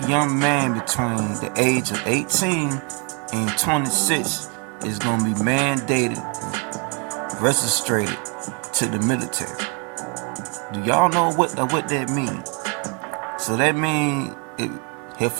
man between the age of 18 and 26 is gonna be mandated, registered to the military. Do y'all know what that means? So that means if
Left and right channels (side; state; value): left; quieter; 36.1 dB